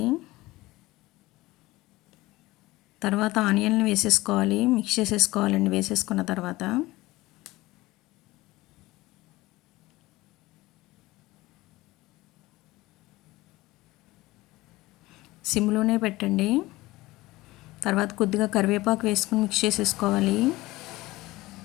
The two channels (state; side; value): quieter; right; 19.3 dB